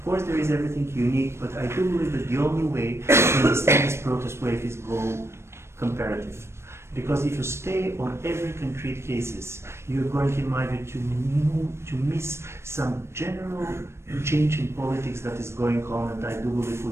course there is everything unique, but I do believe that the only way to understand this protest wave is go comparative. Because if you stay on every concrete cases, you're going, in my view, to miss some general change in politics that is going on, and I do believe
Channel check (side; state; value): left; late; 0.13 ms